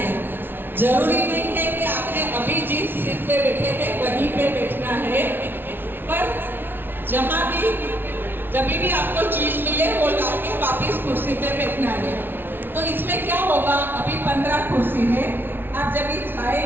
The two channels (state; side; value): late; left; 0.10 ms